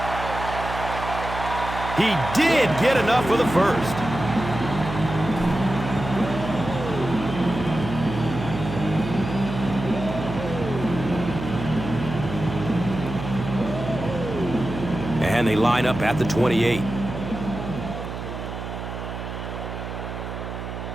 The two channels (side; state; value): right; noise; hum, 7 dB below the sound